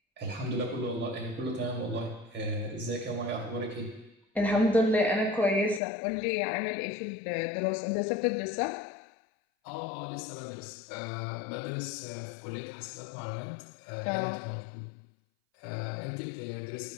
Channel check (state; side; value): drops out; right; at 5.8 s